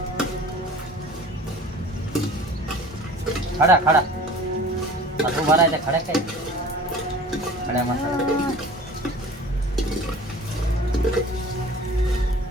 खडा खडा आता उभा राहायचा खड्या काय खड्या मसाला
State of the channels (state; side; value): normal; both; correlation 0.43